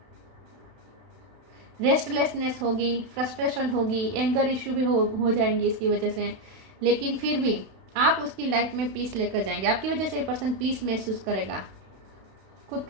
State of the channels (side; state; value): left; late; 32 ms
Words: रेस्टलेसनेस होगी, फ्रस्ट्रेशन होगी, एंगर इश्यू भी हो जाएंगी इसकी वजह से। लेकिन फिर भी आप उसकी लाइफ में पीस लेकर जाएंगे। आपकी वजह से ये पर्सन पीस महसूस करेगा, खुद